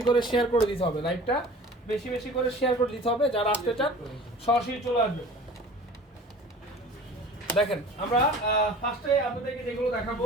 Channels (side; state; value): both; normal; correlation 0.43